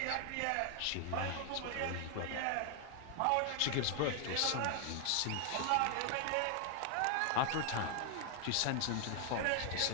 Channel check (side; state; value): both; different; correlation 0.00